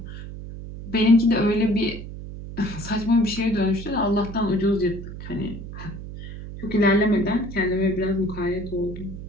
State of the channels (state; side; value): noise; right; hum, 11 dB below the sound